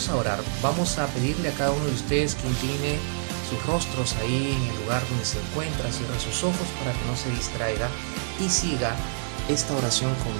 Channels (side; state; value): left; silent; 60 dB below the other